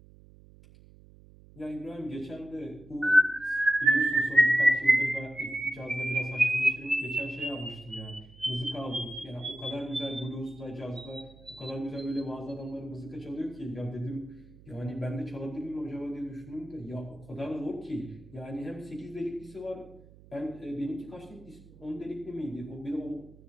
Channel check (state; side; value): noise; right; hum, 22 dB below the sound